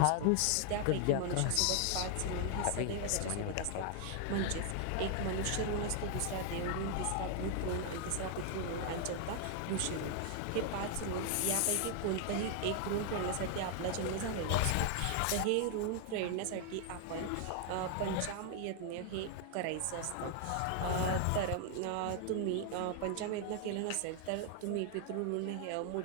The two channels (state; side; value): different; both; correlation 0.00